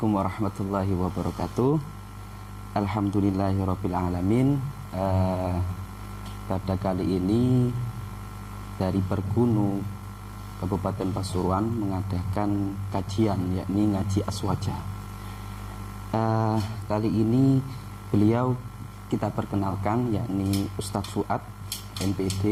warahmatullahi wabarakatuh. Alhamdulillahirabbil alamin. Pada kali ini dari Pergunu Kabupaten Pasuruan mengadakan kajian, yakni ngaji aswaja. Kali ini beliau kita perkenalkan, yakni Ustadz Fuad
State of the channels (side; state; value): both; identical; correlation 1.00